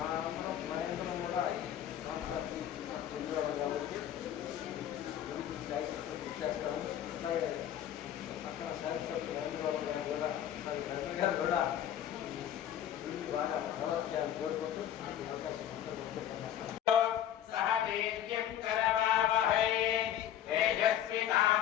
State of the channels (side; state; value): right; quieter; 10.8 dB